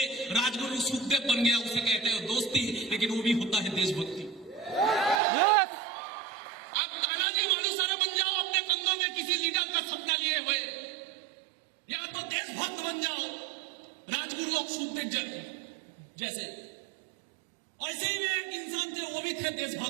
राजगुरु सुखदेव बन गया, उसे कहते हैं दोस्ती, लेकिन वो भी होता है देशभक्ति। आप तानाजी मालुसरे बन जाओ अपने कंधों में किसी लीडर का सपना लिए हुए, या तो देशभक्त बन जाओ राजगुरु सुखदेव जैसे। ऐसे ही एक इंसान थे, वो भी थे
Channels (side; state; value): left; drops out; at 5.2 s